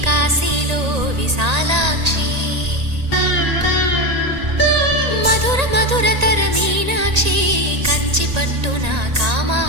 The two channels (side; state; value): left; late; 1.8 ms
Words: కాశీలో విశాలాక్షి మధుర మధురతర మీనాక్షి కంచి పట్టున